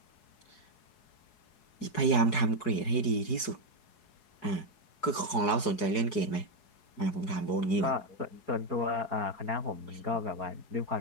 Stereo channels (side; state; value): right; late; 4.7 ms